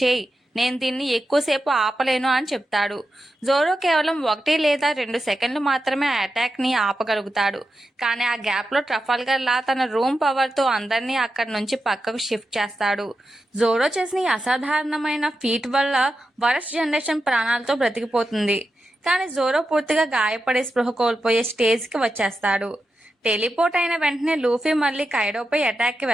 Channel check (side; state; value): both; normal; correlation 0.89